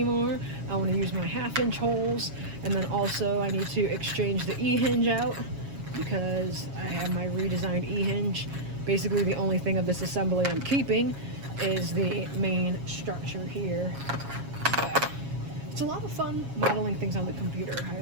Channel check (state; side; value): late; left; 7.3 ms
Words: I want to use my 1/2 inch holes, and then also I need to exchange the E-hinge out because I have my redesigned E-hinge. Basically the only thing of this assembly I'm keeping is the main structure here. But it's a lot of fun modeling things on the computer.